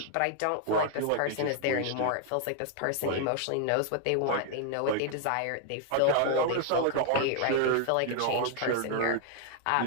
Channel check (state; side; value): different; both; correlation 0.00